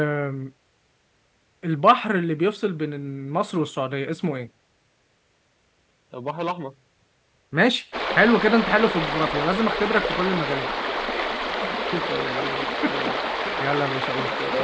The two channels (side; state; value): both; identical; correlation 1.00